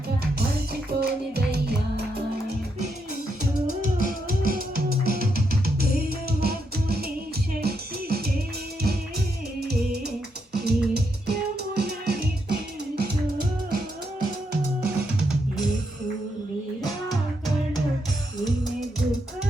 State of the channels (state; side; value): normal; both; correlation 0.80